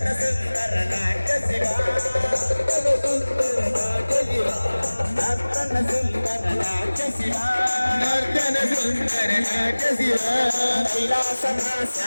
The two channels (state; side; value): inverted; both; correlation -1.00